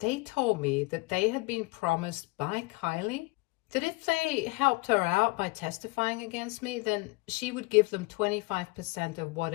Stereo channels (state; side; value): quieter; right; 24.8 dB